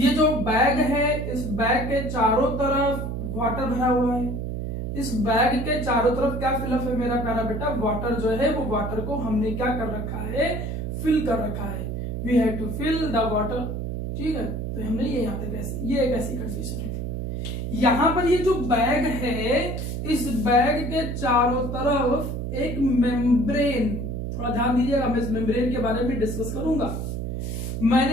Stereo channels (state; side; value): noise; right; hum, 3 dB below the sound